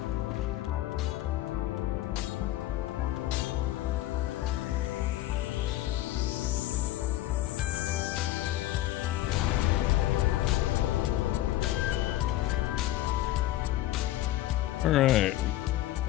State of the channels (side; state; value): right; quieter; 15.1 dB